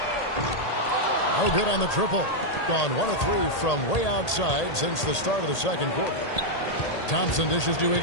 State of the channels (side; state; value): right; late; 1.8 ms